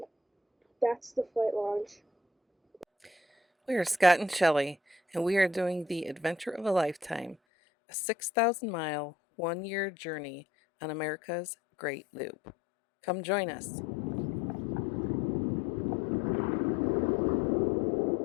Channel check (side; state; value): right; drops out; at 7.4 s